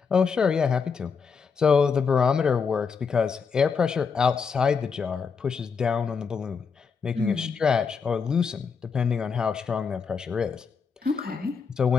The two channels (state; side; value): quieter; right; 5.7 dB